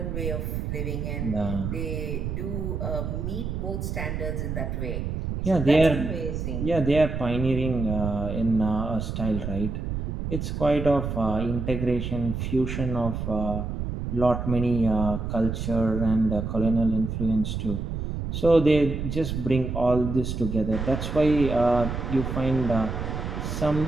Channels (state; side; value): noise; right; rumble, 4 dB below the sound